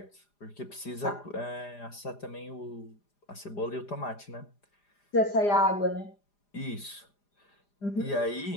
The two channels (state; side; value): late; right; 4.9 ms